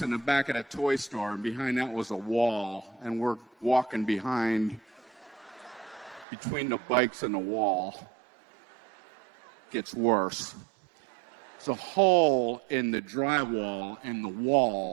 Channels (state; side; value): drops out; left; at 6.2 s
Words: in the back of the toy store, and behind that was a wall. And we're walking between the bikes and the wall. Gets worse. There's a hole in the drywall in the